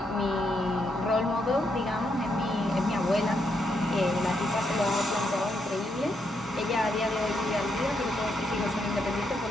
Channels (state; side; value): normal; both; correlation 0.78